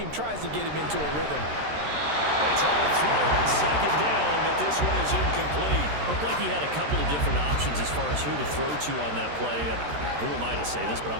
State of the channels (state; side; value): late; left; 13 ms